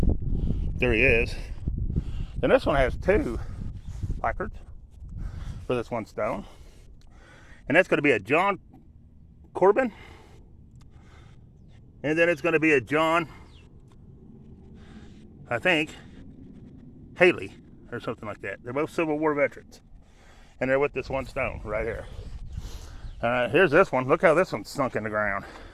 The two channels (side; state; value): both; identical; correlation 1.00